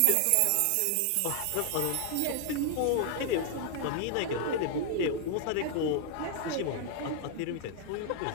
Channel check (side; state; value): both; different; correlation 0.00